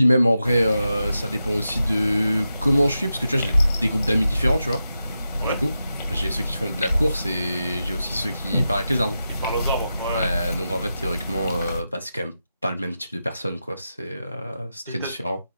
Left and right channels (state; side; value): inverted; both; correlation -0.89